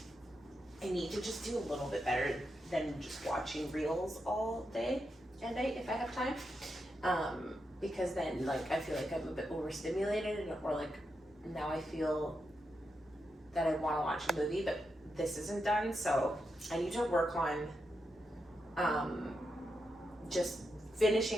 I need to just do a little bit better than just watching reels all day and night if I have time, because then like I feel like I'm a bit overstimulated, or like now I feel that I want to watch a movie but this isn't done, so I need to work on just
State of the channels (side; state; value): both; normal; correlation 0.85